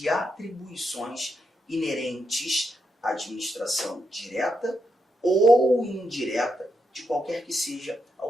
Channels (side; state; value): both; normal; correlation 0.82